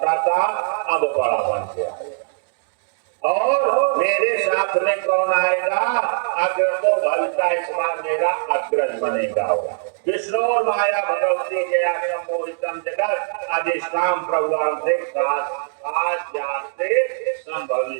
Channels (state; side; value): silent; left; digital silence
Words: था अब बड़ा बन के आएगा। और मेरे साथ में कौन आएगा? अग्र तो भविता इस बार मेरा अग्रज बनेगा। विष्णु और माया भगवती जया सम्मोहितम जगत अधिष्ठान प्रभुवान से